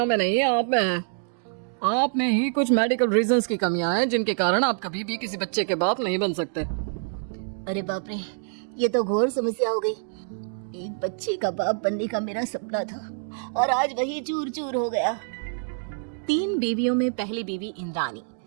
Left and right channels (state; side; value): silent; left; digital silence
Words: में नहीं है, आप में है। आप में ही कुछ मेडिकल रीजंस की कमियां हैं जिनके कारण आप कभी भी किसी बच्चे के बाप नहीं बन सकते। अरे बाप रे, ये तो घोर समस्या हो गई। एक बच्चे का बाप बनने का मेरा सपना था और आज वही चूर चूर हो गया। तीन बीवियों में पहली बीवी इंद्राणी,